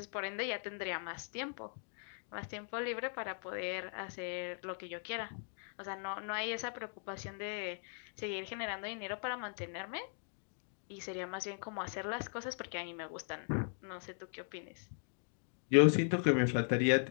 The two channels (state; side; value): silent; right; 52 dB below the other